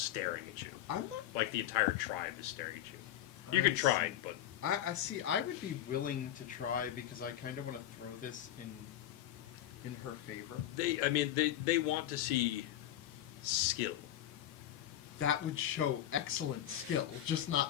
at you. I'm not. Like the entire tribe is staring at you. You I can try, see. but I see. I would be willing to try because I kind of want to throw this in her favor. they want to see skill. That would show excellent skill, just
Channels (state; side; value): quieter; right; 12.1 dB